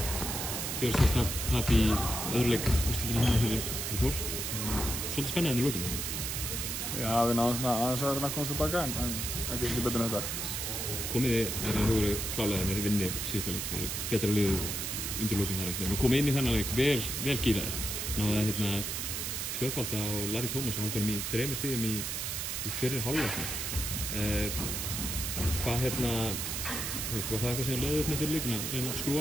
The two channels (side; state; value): right; noise; hiss, 3 dB below the sound